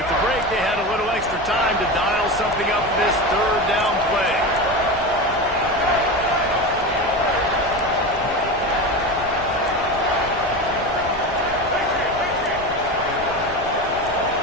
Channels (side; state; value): left; noise; rumble, 16 dB below the sound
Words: the break, they had a little extra time to dial something up for this third down play.